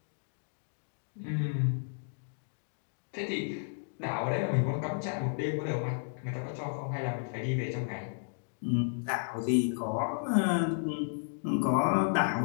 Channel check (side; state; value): right; silent; digital silence